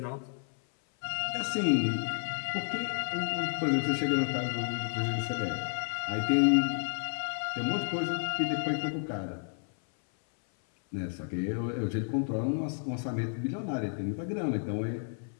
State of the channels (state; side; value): silent; right; 57 dB below the other